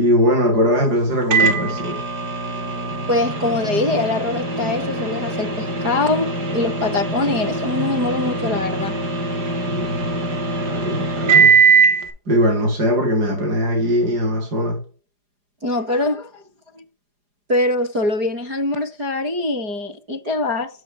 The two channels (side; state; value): left; late; 4.9 ms